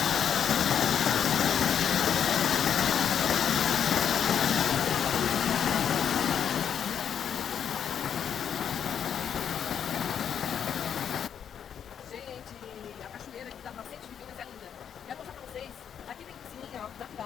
A cachoeira que dá pra Nascentes Divinas é linda. Quero mostrar pra vocês. Aqui tem piscininha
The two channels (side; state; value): right; quieter; 8.4 dB